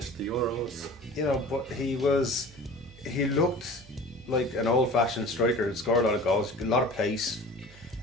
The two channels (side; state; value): both; normal; correlation 0.40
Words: at the Euros. But he looked like an old-fashioned striker who scored a lot of goals, a lot of pace.